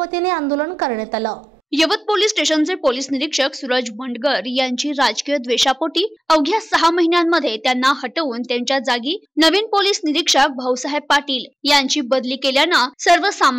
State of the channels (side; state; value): both; normal; correlation 0.95